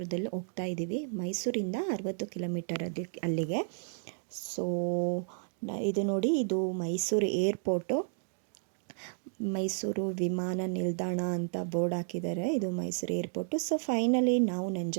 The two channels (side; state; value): left; silent; digital silence